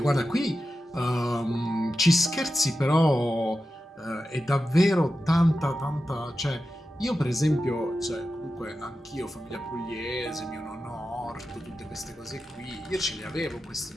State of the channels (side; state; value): both; normal; correlation 0.92